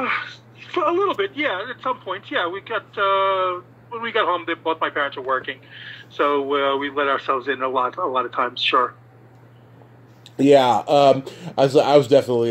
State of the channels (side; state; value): both; identical; correlation 1.00